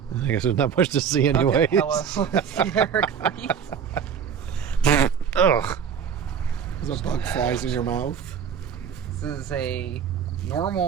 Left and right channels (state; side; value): quieter; left; 7.5 dB